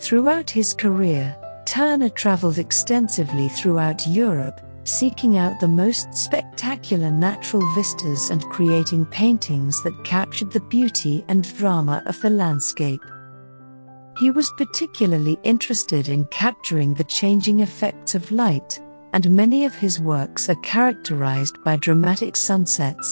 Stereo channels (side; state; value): both; inverted; correlation -1.00